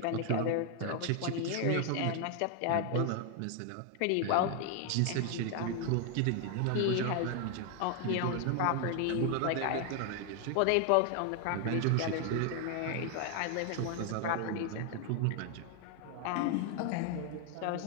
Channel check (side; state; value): both; different; correlation 0.00